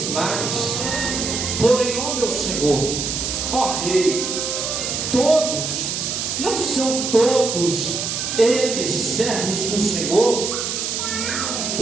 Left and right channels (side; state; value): right; noise; hiss, 2 dB below the sound